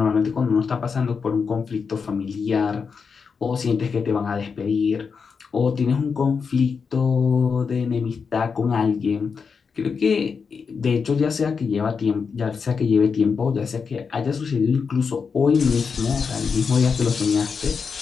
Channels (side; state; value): right; quieter; 5.6 dB